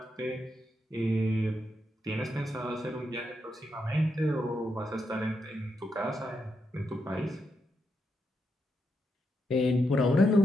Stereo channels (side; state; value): both; normal; correlation 0.83